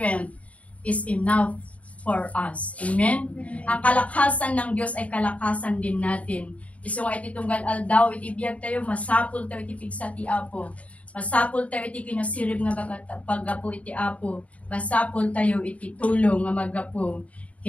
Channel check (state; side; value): late; right; 0.067 ms